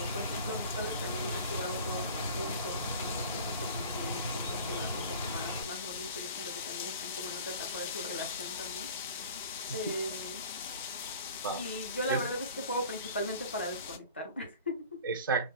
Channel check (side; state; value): both; inverted; correlation -0.41